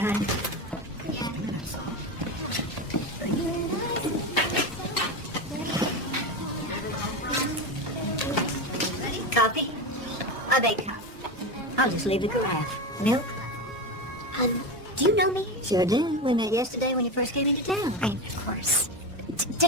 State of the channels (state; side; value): normal; both; correlation 0.19